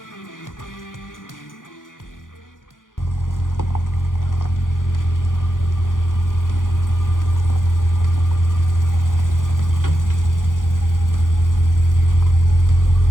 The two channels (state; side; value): late; right; 0.89 ms